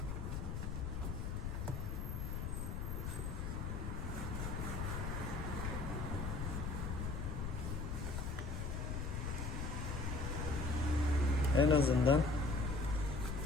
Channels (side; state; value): left; noise; rumble, 2 dB below the sound